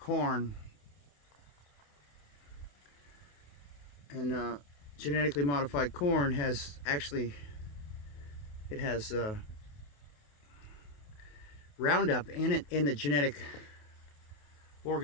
And genetically modified corn has Roundup in it, in the genetic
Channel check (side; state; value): right; late; 28 ms